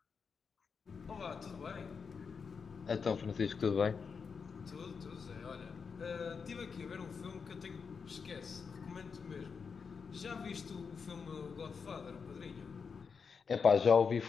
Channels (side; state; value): right; quieter; 5.7 dB